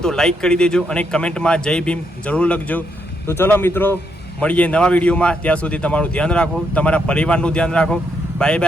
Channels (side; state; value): both; normal; correlation 0.78